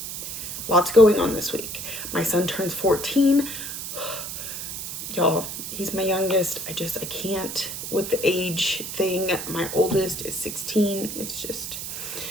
going on this week. My son turns 14. Y'all, he's my youngest. I can't with the age thing. My oldest is 16. It's just,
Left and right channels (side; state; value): right; noise; hiss, 6 dB below the sound